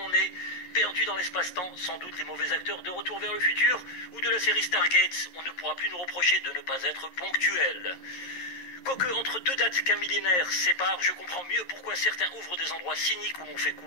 est. Perdu dans l'espace-temps, sans doute les mauvais acteurs de Retour vers le futur ou de la série Stargate. On ne pourra plus nous reprocher de ne pas être ponctuel. Quoique, entre deux dates qu'un millénaire sépare, je comprends mieux pourquoi certains ouvrent des endroits cyniques où l'on fait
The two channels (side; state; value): right; late; 11 ms